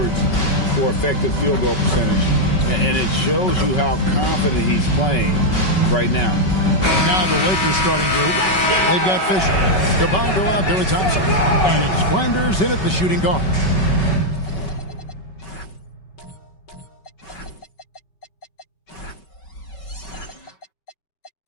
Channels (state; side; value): late; right; 5.3 ms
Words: for effective field goal percentage. And it shows you how confident he's playing right now. Now the Lakers starting group. They've got Fisher, Cabango out there with Thompson, and it's Flanders in at the shooting guard.